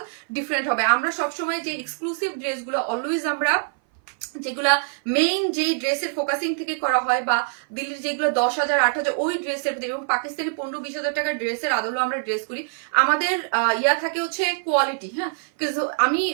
ডিফারেন্ট হবে। আমরা সবসময় যে এক্সক্লুসিভ ড্রেসগুলো অলওয়েজ আমরা যেগুলা মেইন যে ড্রেসের ফোকাসিং থেকে করা হয়, বা দিল্লির যেগুলো 10,000-8,000 ওই ড্রেসের, এবং পাকিস্তানি 15-20 হাজার টাকার ড্রেসের আদলও আমরা ড্রেস করি। আমাদের ইয়া থাকে হচ্ছে কোয়ালিটি। হ্যাঁ,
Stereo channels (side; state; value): left; silent; 57 dB below the other